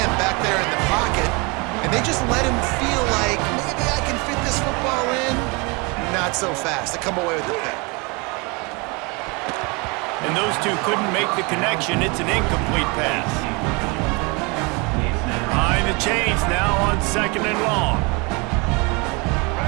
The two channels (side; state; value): left; quieter; 28.8 dB